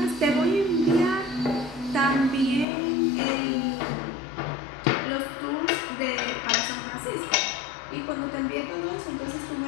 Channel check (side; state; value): right; drops out; at 2.7 s